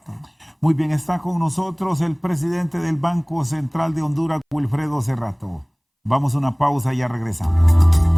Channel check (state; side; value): identical; both; correlation 1.00